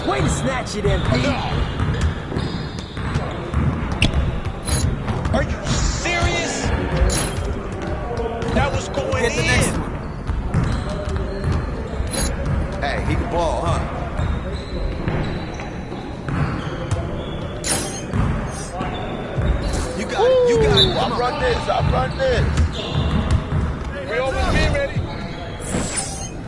Way to snatch it, MP. Are you serious? That was going Get the in. next one. Hey, he can ball, huh? You got it. You got it. I run this. I run this. We always be ready.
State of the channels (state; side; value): identical; both; correlation 1.00